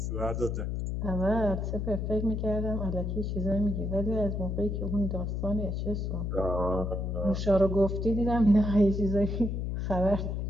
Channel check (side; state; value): left; noise; hum, 2 dB below the sound